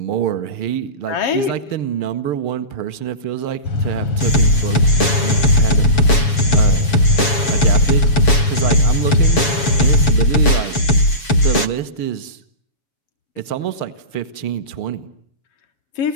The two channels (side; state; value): right; late; 7.1 ms